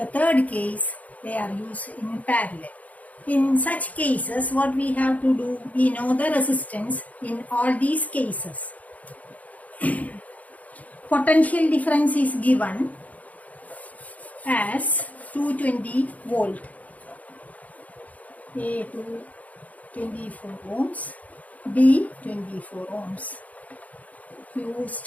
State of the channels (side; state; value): right; late; 0.073 ms